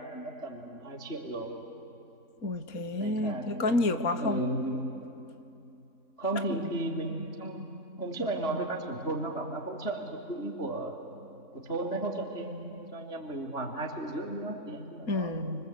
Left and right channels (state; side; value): late; right; 3.6 ms